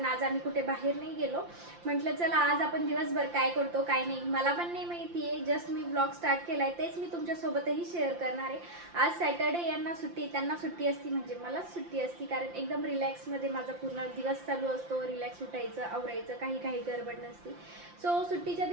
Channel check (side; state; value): left; late; 5.8 ms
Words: आज आम्ही कुठे बाहेर नाही गेलो. म्हटलं चला आज आपण दिवसभर काय करतो काय नाही मला पण नाही माहिती आहे. जस्ट मी ब्लॉग स्टार्ट केला आहे, तेच मी तुमच्यासोबतही शेअर करणार आहे. आज सॅटर्डे, यांना सुट्टी, त्यांना सुट्टी असती म्हणजे मलाच सुट्टी असती, कारण एकदम रिलॅक्समध्ये माझा पूर्ण दिवस चालू असतो. रिलॅक्स उठायचं, आवरायचं, काही गडबड नसती. सो सुट्टीच्या